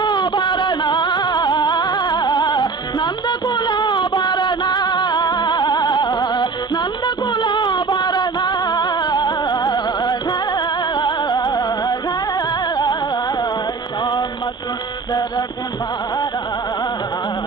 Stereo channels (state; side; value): quieter; left; 4.5 dB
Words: నందకులాభరణ, నందకులాభరణ, శ్యామ సుందర కుమారా,